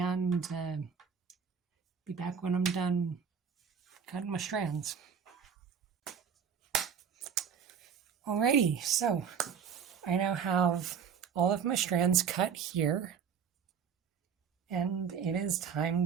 be back when I'm done cutting my strands. Alrighty, so I now have all of my strands cut here, and it is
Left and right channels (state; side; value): quieter; left; 7.0 dB